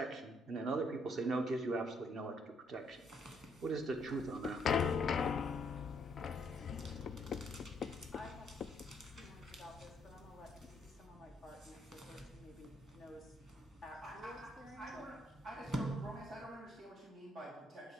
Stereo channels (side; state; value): both; normal; correlation 0.71